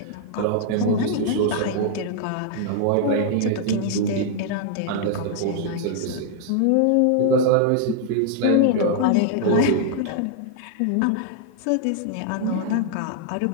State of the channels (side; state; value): both; different; correlation 0.00